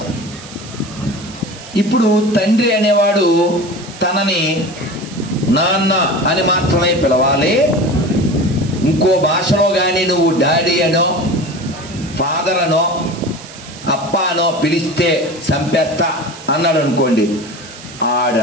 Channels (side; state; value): right; noise; hiss, 17 dB below the sound